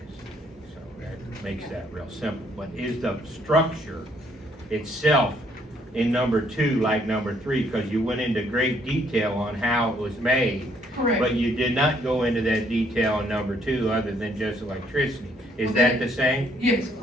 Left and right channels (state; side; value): normal; both; correlation 0.67